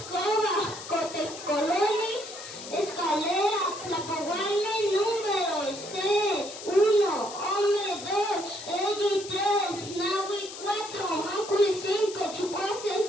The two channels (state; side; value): noise; left; hiss, 12 dB below the sound